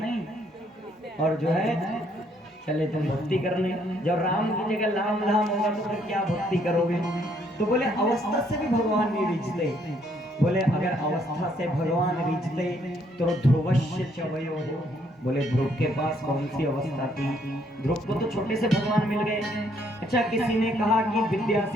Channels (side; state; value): both; normal; correlation 0.68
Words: और जो है चले तुम भक्ति करने। जब राम की जगह लाम लाम होगा तो फिर क्या भक्ति करोगे? तो बोले अवस्था से भी भगवान नहीं रिझते। बोले अगर अवस्था से भगवान रिझते तो ध्रुवस्य च वयो। बोले ध्रुव के पास कौन सी अवस्था थी? ध्रुव को तो छोटे से भगवान मिल गए। अच्छा, किसी ने कहा कि विद्या